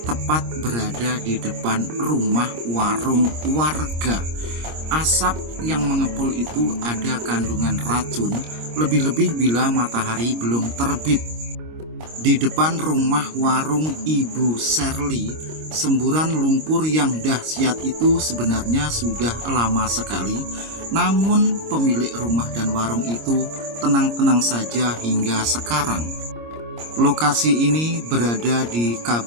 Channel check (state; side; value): late; left; 26 ms